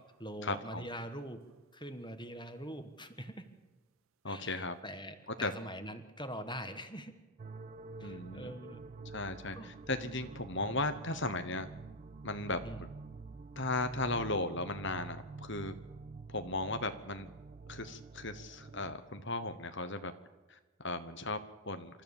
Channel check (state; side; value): normal; both; correlation -0.03